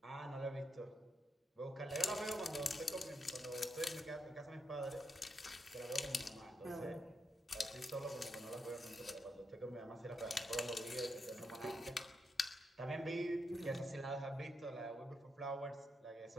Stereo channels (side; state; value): both; normal; correlation 0.83